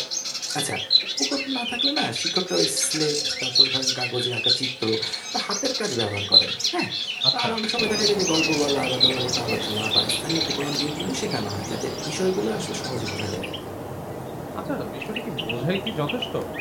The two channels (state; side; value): identical; both; correlation 1.00